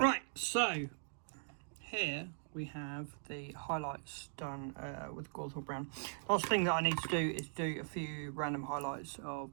so here we have the highlights done with Gawthorpe Brown. Last thing that I need to do is do a few random highlights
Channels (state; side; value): silent; left; digital silence